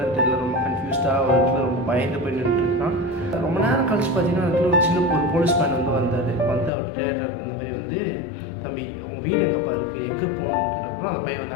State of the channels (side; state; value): right; drops out; at 6.7 s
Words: தெரியல, ரொம்ப கன்ஃபியூஸ்டாக ஒரு இடத்துல ரொம்ப பயந்து போய் நின்றுட்டுருக்கான். ரொம்ப நேரம் கழிச்சு பார்த்தீங்கன்னா அந்த இடத்துல ஒரு சின்ன ஒரு போலீஸ் மேன் வந்து வந்தார். வந்து அவர் ட்ரேடர் இந்த மாதிரி வந்து, தம்பி உன் வீடு எங்கேப்பா இருக்குது, எங்கே போகணுன்றப்போ அந்த பையன்